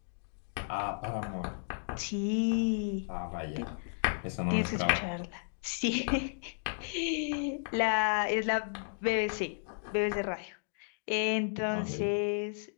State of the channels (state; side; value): silent; right; digital silence